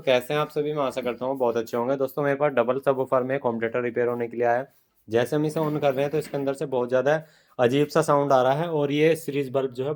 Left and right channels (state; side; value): identical; both; correlation 1.00